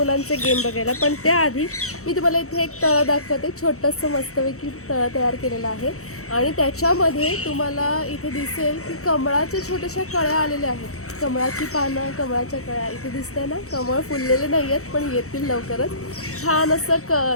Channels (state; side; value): late; right; 0.64 ms